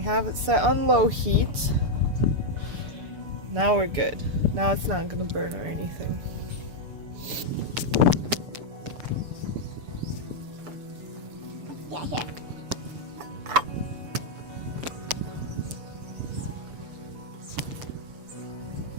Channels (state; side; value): late; left; 6.8 ms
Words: have it set on low heat. Now we're good. Now it's not gonna burn or anything. Yeah, here.